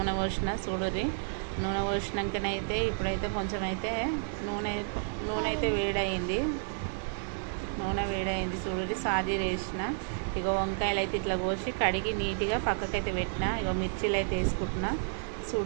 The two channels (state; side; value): silent; left; digital silence